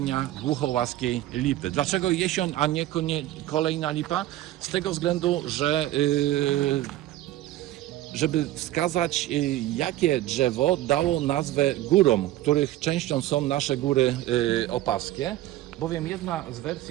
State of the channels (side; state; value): left; quieter; 14.8 dB